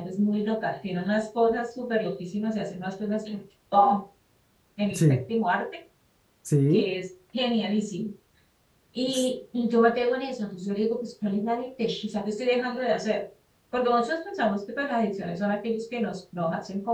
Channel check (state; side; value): identical; both; correlation 1.00